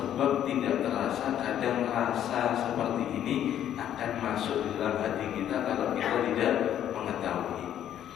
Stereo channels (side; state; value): right; quieter; 10.7 dB